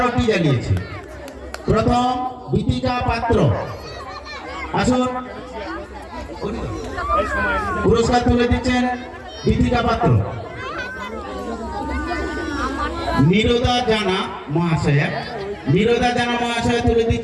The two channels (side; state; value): both; identical; correlation 1.00